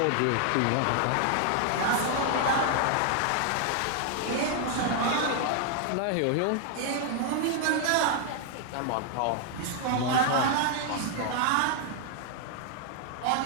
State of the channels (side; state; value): both; different; correlation 0.00